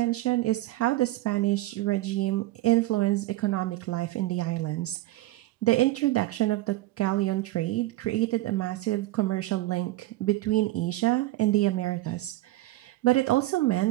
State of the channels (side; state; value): left; quieter; 17.4 dB